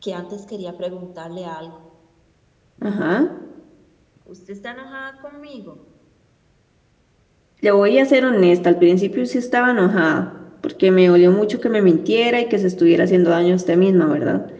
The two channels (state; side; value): identical; both; correlation 1.00